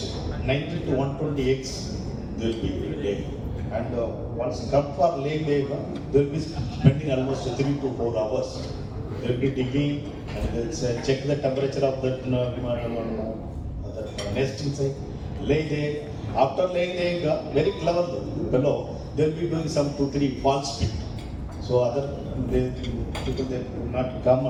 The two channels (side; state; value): both; identical; correlation 1.00